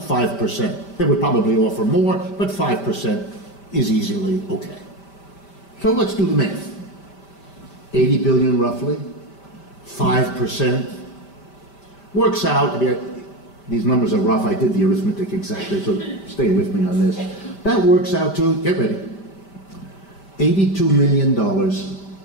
They would probably offer more, but 5% is easily okay. So let's do the math. 80 billion roughly, 5%. Works out, I mean, these numbers are rough, I did the arithmetic exactly, so stay with me on this. That works out to, get ready, $82 million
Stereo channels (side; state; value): right; late; 5.1 ms